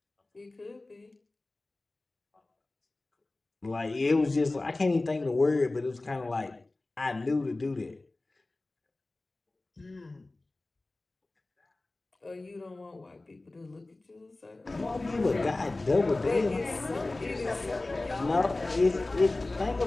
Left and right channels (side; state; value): right; quieter; 3.0 dB